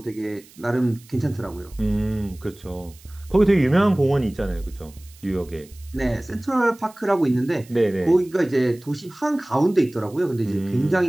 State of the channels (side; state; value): right; noise; hiss, 25 dB below the sound